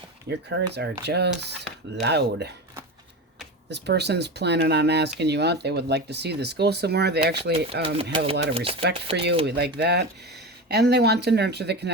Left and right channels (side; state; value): both; normal; correlation 0.24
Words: Your cards are just loud. This person's planning on asking you out. They would like to see this go somewhere. They actually have a lot of respect for you. We like that. And they want to nurture the